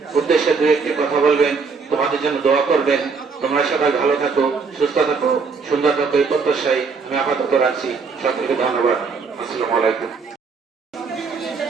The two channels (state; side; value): quieter; left; 5.0 dB